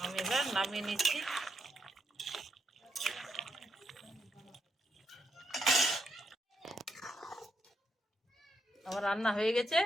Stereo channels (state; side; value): normal; both; correlation 0.80